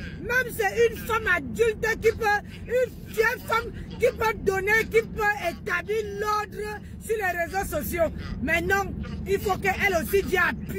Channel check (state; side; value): identical; both; correlation 1.00